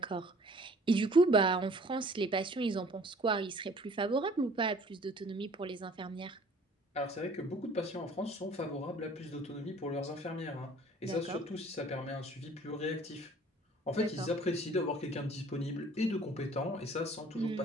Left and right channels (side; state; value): both; normal; correlation 0.52